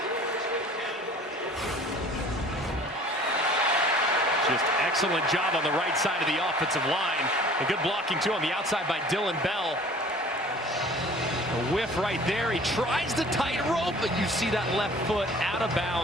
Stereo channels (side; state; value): both; normal; correlation 0.48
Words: Just excellent job on the right side of the offensive line. And good blocking, too, on the outside by Dylan Bell. A whiff right there. He tries the tightrope, but you see that left foot out of